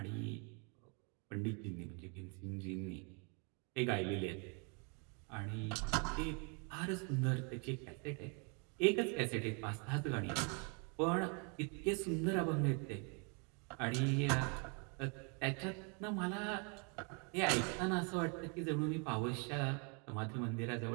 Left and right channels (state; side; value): quieter; left; 35.9 dB